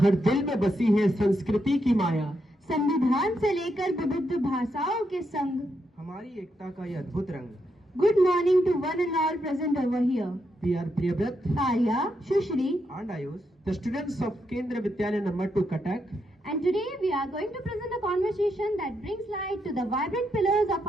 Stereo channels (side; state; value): both; normal; correlation 0.81